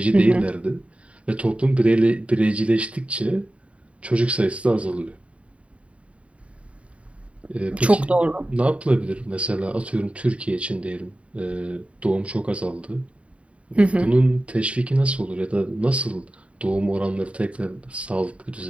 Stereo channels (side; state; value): left; late; 0.063 ms